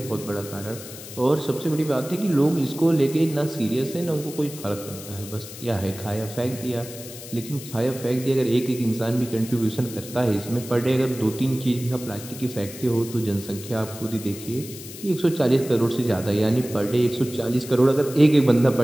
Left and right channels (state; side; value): noise; left; hiss, 14 dB below the sound